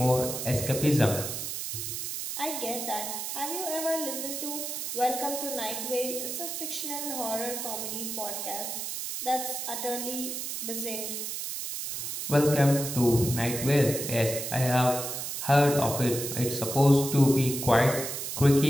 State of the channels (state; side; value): noise; right; hiss, 5 dB below the sound